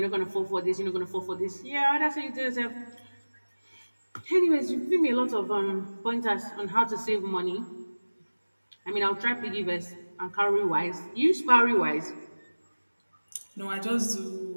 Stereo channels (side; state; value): both; inverted; correlation -1.00